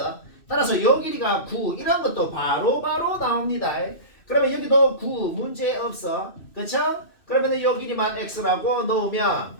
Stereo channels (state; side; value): late; right; 2.6 ms